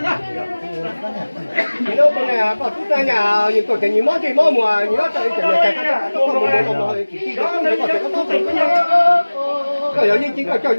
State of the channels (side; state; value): both; inverted; correlation -1.00